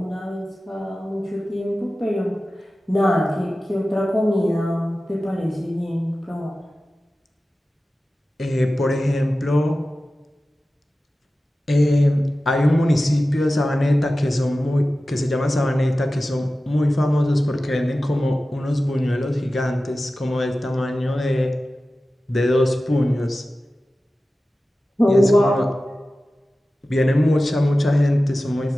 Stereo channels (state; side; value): normal; both; correlation 0.95